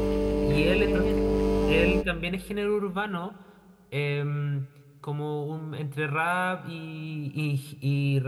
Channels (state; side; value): identical; both; correlation 1.00